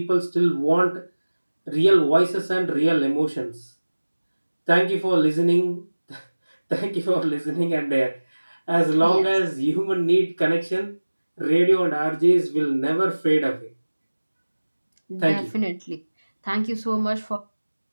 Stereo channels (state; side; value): inverted; both; correlation -1.00